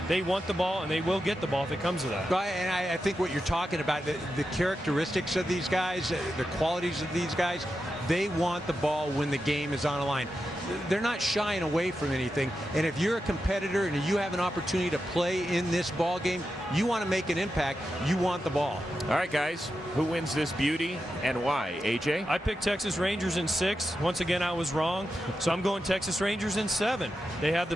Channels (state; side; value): normal; both; correlation 0.89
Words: They want the ball, and they will get the ball if it comes to that. And I think what you're talking about, the characteristics of these guys, the qualities of these guys, they want the ball when the game is on the line. They're not shying away from anything. And if you're a competitor and you have an opportunity to play in this ball game, you want to make an impact, you want the ball. All right, guys, who wins this beauty and why? AJ? I picked Texas Rangers in 6. Once again, I was wrong. So I'm going Texas Rangers in 7. They have